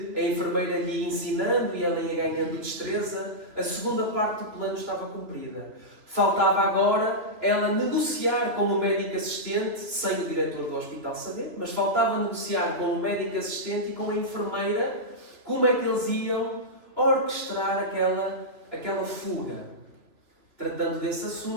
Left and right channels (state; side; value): late; left; 2.8 ms